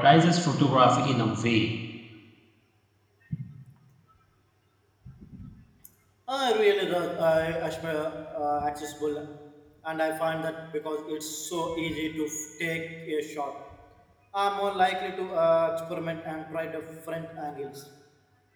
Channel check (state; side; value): identical; both; correlation 1.00